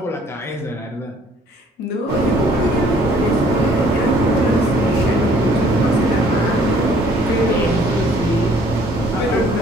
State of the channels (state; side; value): normal; both; correlation 0.59